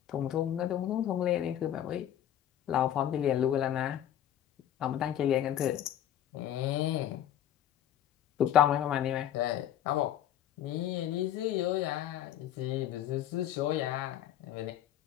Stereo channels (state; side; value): quieter; right; 11.2 dB